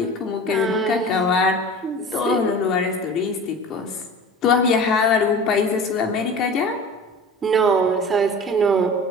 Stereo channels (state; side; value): normal; both; correlation 0.38